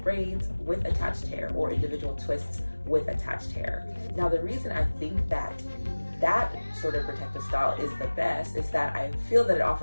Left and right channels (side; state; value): both; inverted; correlation -1.00